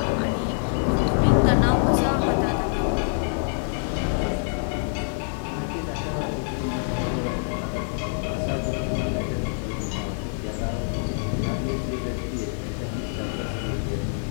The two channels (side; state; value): right; silent; digital silence